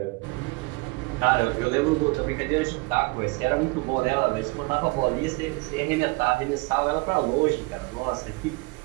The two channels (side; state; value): left; quieter; 26.4 dB